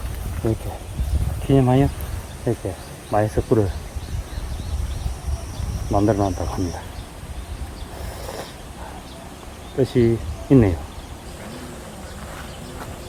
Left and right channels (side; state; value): both; identical; correlation 1.00